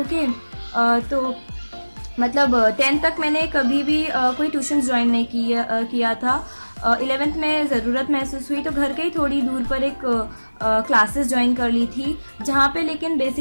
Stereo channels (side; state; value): both; inverted; correlation -1.00